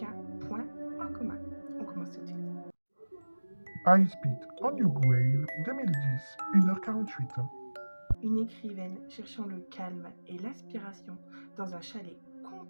point en commun. On commence tout de suite. High Speed on Your Grave 2010, 1h48. Une écrivaine cherchant le calme et l'aspiration dans un chalet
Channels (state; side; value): inverted; both; correlation -1.00